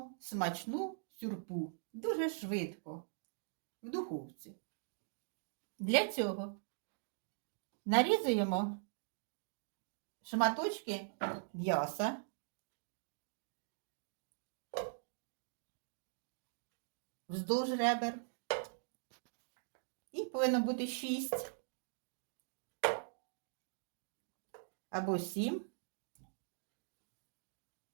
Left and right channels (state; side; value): silent; left; digital silence